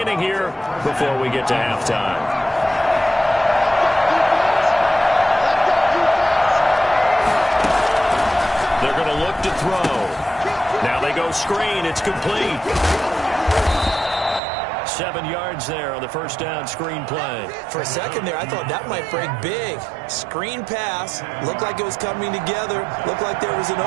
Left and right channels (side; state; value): left; drops out; at 14.4 s